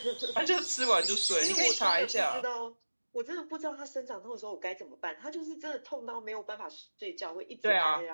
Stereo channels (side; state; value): both; inverted; correlation -1.00